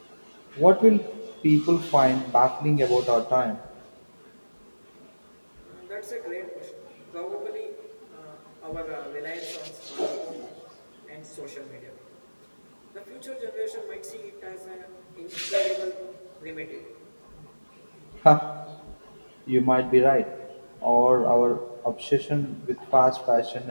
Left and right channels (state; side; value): inverted; both; correlation -1.00